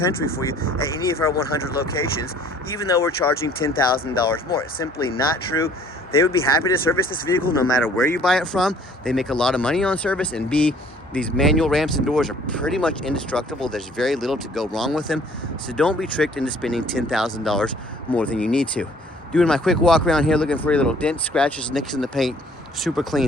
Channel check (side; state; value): both; normal; correlation 0.56